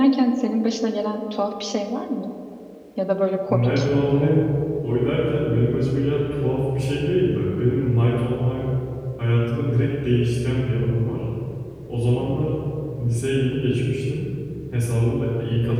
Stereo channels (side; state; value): both; identical; correlation 1.00